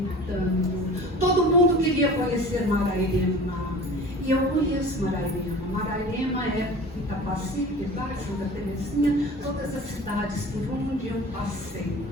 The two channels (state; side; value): normal; both; correlation 0.40